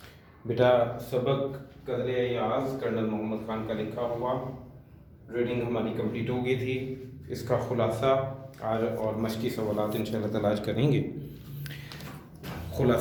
बेटा सबक कदर याज़ कर्नल मोहम्मद ख़ान का लिखा हुआ रीडिंग हमारी कंप्लीट हो गई थी। इसका ख़ुलासा और मशक़ी सवालात इंशाअल्लाह ताला आज करेंगे।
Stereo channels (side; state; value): both; identical; correlation 1.00